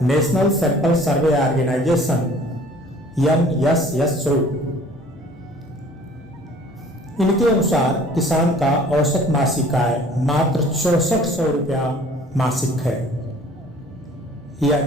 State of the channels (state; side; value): normal; both; correlation 0.51